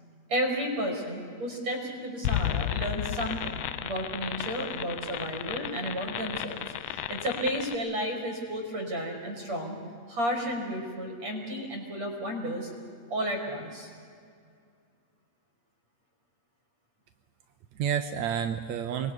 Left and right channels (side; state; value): left; late; 8.5 ms